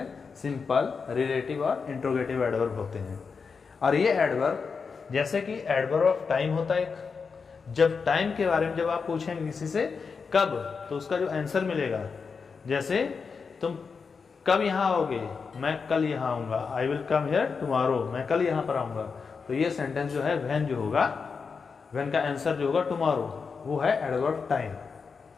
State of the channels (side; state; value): right; quieter; 5.3 dB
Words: सिंपल, रिलेटिव और इंट्रोगेटिव एडवर्ब होते हैं। और ये एडवर्ब जैसे कि एडवर्ब ऑफ टाइम होता है, जब टाइम के बारे में जब आप पूछेंगे किसी से कब, तो उसका जो आंसर मिलेगा, जैसे तुम कब यहाँ आओगे, मैं कल यहाँ आऊँगा, I will come here tomorrow, मैं कल यहाँ पर आऊँगा। तो ये सेंटेंस जो है व्हेन जो होगा, व्हेन का आंसर जो होगा टुमारो, वो है एडवर्ब टाइम।